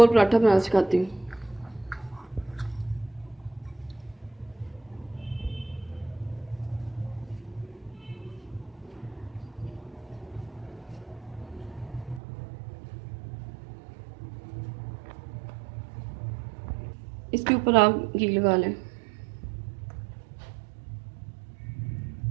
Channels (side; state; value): left; drops out; at 12.2 s